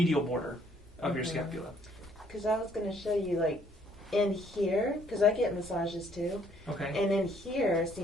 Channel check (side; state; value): both; normal; correlation 0.64